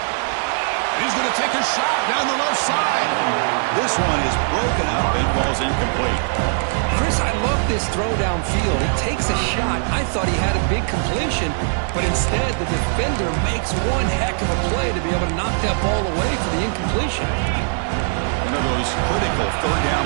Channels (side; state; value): left; silent; digital silence